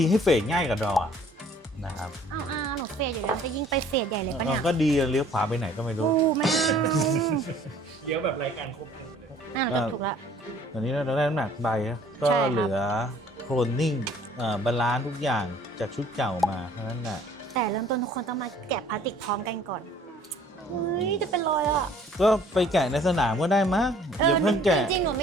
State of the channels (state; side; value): normal; both; correlation 0.55